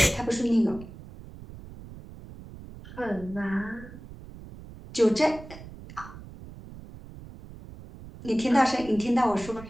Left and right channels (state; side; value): noise; right; rumble, 16 dB below the sound